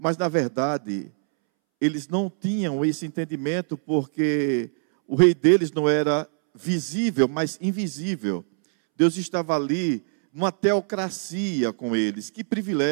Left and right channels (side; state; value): left; silent; 63 dB below the other